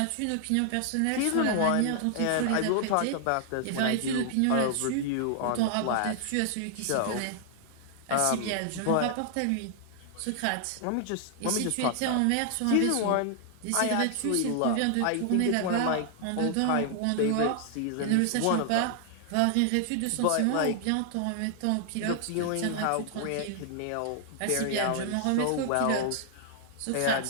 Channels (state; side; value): different; both; correlation 0.00